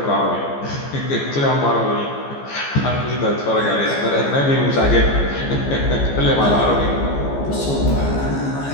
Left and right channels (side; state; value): right; late; 14 ms